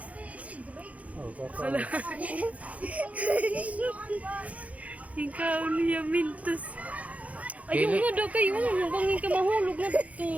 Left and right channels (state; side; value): late; left; 0.068 ms